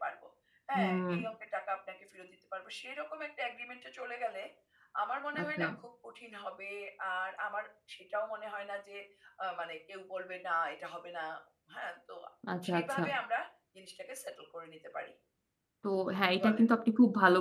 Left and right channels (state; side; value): identical; both; correlation 1.00